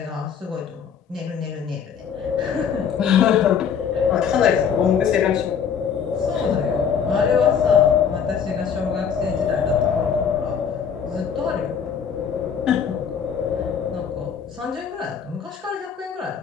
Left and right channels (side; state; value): right; quieter; 7.3 dB